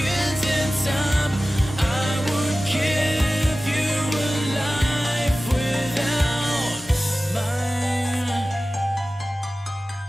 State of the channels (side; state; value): both; normal; correlation 0.96